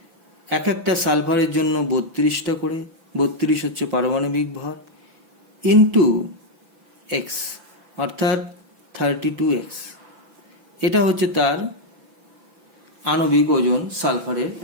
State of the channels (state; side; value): late; left; 5.9 ms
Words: এক একটা সালফারের জন্য 32টা করে, 32 হচ্ছে পারমাণবিক ভর, ইন্টু এক্স অর্থাৎ 32x। এটা হচ্ছে তার আণবিক ওজন সালফারের